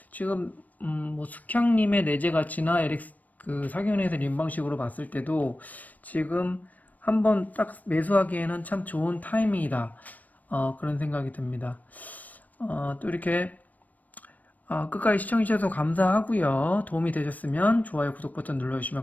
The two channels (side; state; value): right; late; 0.077 ms